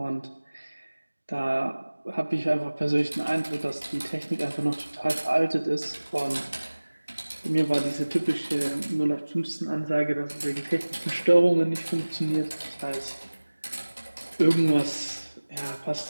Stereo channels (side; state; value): both; inverted; correlation -1.00